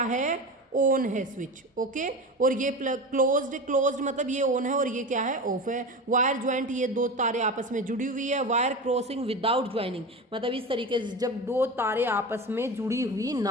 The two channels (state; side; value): normal; both; correlation 0.27